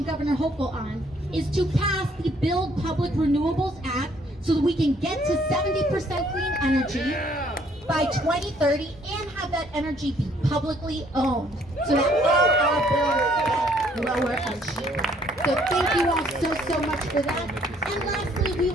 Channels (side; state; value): both; normal; correlation 0.64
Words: Governor Hochul on is to pass the Build Public Renewables Act so that we can get to 70% clean energy by 2030 and have that energy be publicly owned so that all our bills So thank you all so much for that. And lastly, we